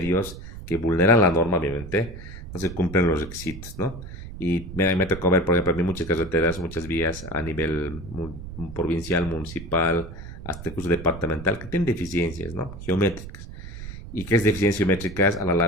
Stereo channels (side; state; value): right; noise; rumble, 12 dB below the sound